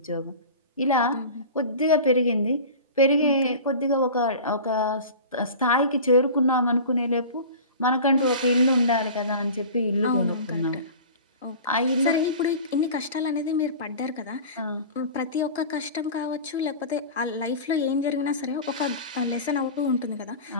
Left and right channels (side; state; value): both; inverted; correlation -0.36